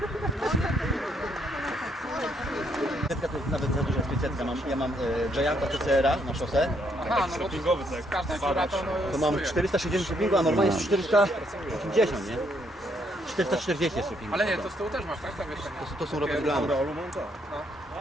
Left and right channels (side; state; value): both; normal; correlation 0.72